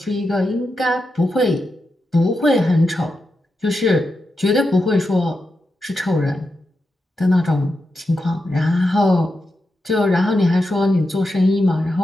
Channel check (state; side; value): normal; both; correlation 0.87